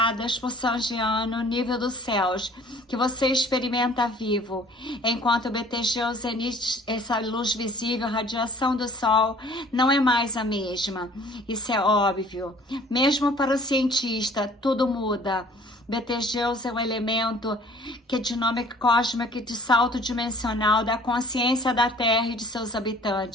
por São Jean no nível dos céus, que você experimenta vivo. Enquanto Betelgeuse emite essa luz visível, a radiação do Sol não é mais a mesma. Isso é óbvio. Mesmo para o cientista, tudo muda. Betelgeuse é um elemento que é dinâmica cósmica de salto dimensional da consciência da Terra e de seus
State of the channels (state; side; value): normal; both; correlation 0.53